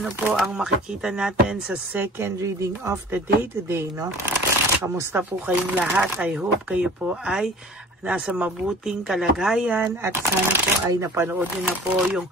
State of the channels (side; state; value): both; normal; correlation 0.45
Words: po ang makikita natin sa second reading of the day today, no? Kamusta po kayong lahat? I hope kayo po ay nasa mabuting kalagayan at sana po ay napanood niyo na po yung